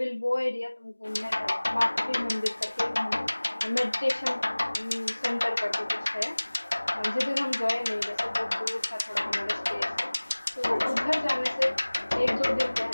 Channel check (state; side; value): inverted; both; correlation -1.00